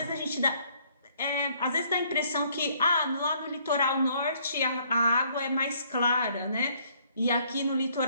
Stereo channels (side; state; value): both; inverted; correlation -0.65